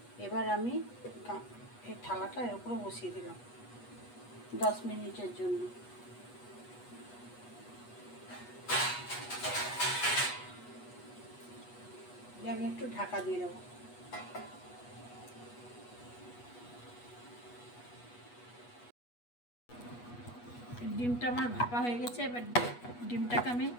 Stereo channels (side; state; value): right; late; 8.3 ms